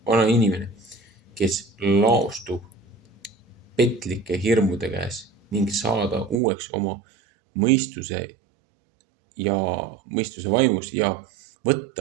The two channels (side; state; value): left; drops out; at 6.4 s